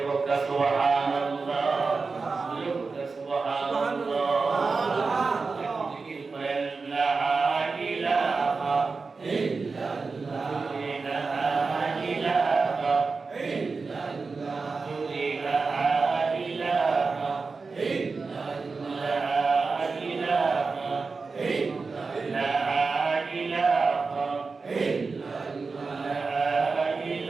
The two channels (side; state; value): left; quieter; 4.4 dB